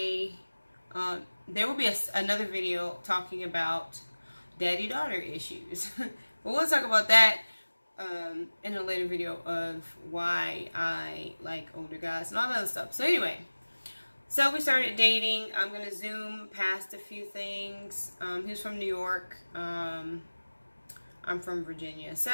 there will be another video talking about daddy-daughter issues. But we'll talk about that in a later video of why I like older guys and all that other stuff. So anyway, so we started dating. I'm going to zoom past a few things. He was from New York. I'm from Virginia.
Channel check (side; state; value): both; inverted; correlation -1.00